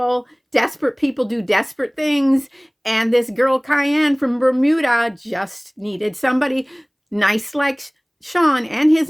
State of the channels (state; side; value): identical; both; correlation 1.00